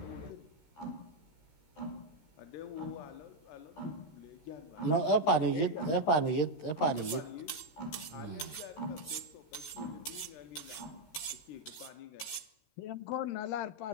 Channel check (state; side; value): late; right; 13 ms